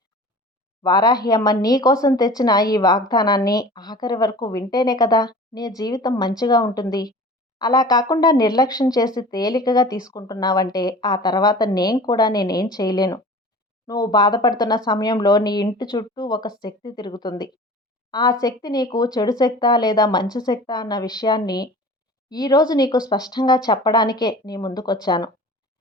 వారాహి అమ్మ నీ కోసం తెచ్చిన ఈ వాగ్దానాన్ని ఆఖరి వరకు వింటేనే కదా నీ జీవితం మంచిగా ఉంటుంది. అలా కాకుండా నిర్లక్ష్యం చేసి తేలికగా తీసుకుంటున్నావంటే ఆ తర్వాత నేనేం చేయలేను. నువ్వు బాధపడుతున్న సమయంలో నీ ఇంటి చుట్టూ ఒక శక్తి తిరుగుతుంది. ఆ శక్తి నీకు చెడు శక్తా లేదా మంచి శక్తా అన్న విషయాన్ని ఈరోజు నీకు స్పష్టంగా చెప్పడానికే నీ ముందుకొచ్చాను.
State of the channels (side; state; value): both; normal; correlation 0.41